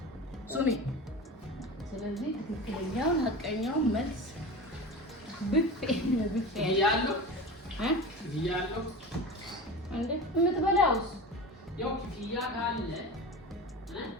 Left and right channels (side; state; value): both; normal; correlation 0.31